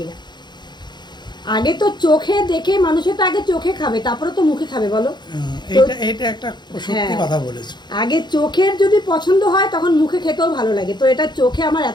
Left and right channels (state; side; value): late; right; 0.21 ms